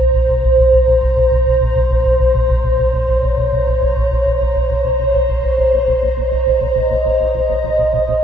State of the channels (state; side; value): normal; both; correlation 0.73